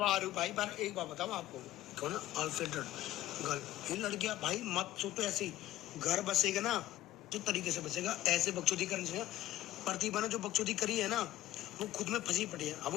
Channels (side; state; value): right; quieter; 14.4 dB